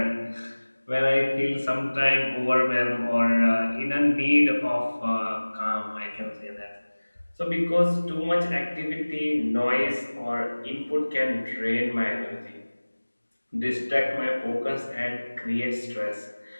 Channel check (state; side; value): inverted; both; correlation -1.00